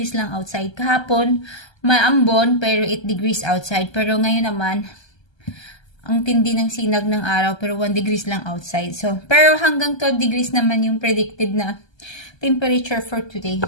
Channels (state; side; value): late; right; 1.3 ms